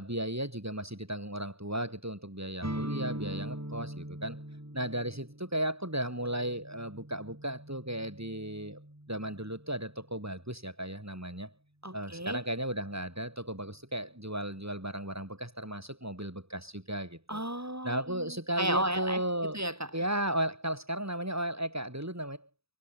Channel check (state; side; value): late; left; 0.78 ms